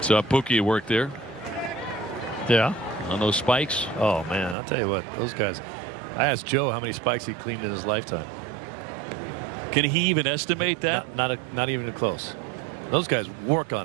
So Pookie worked there. Yeah. On those spikes. Oh, man, I'll tell you what, those guys. I asked Joe how many spikes he cleaned in his lifetime. Can he even estimate that? Not even close. Those guys work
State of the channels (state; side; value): drops out; left; at 4.5 s